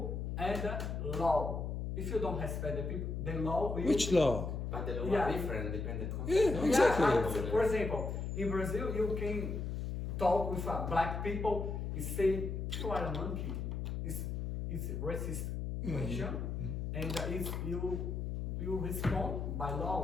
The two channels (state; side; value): noise; left; hum, 3 dB below the sound